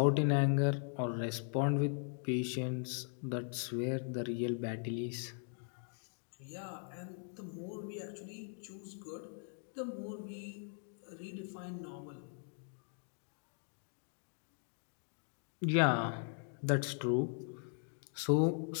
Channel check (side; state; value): right; silent; 52 dB below the other